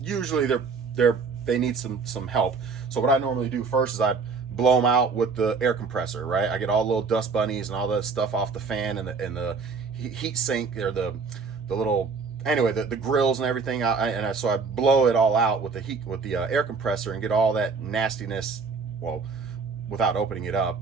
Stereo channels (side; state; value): left; quieter; 4.8 dB